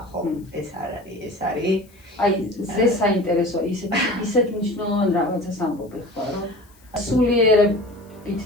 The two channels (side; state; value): left; noise; hiss, 30 dB below the sound